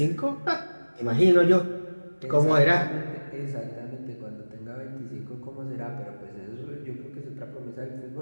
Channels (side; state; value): both; inverted; correlation -1.00